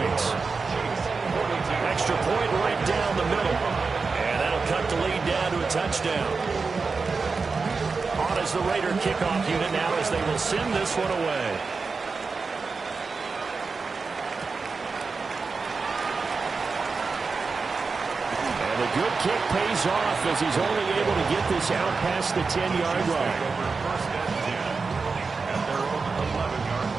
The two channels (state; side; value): quieter; left; 4.5 dB